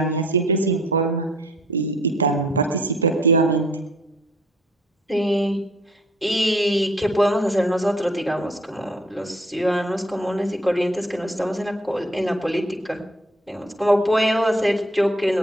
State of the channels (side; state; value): both; normal; correlation 0.58